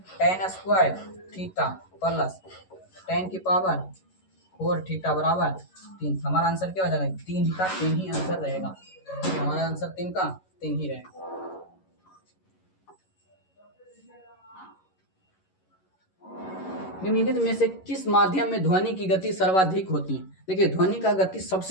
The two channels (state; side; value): late; right; 11 ms